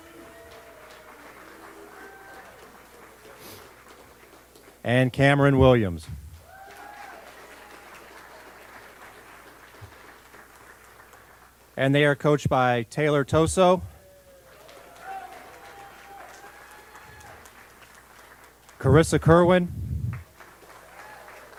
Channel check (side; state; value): both; identical; correlation 1.00